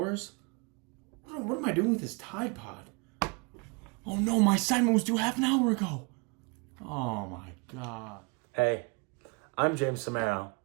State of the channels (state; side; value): quieter; left; 31.8 dB